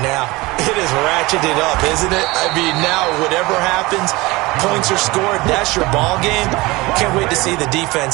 now? It is ratcheted up, isn't it? I mean, now whatever happens, points are scored, that's your ball game. Can't wait to see the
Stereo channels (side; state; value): left; quieter; 22.0 dB